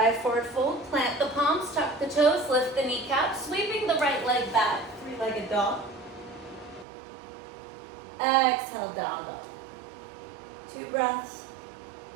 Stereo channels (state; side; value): drops out; left; at 6.9 s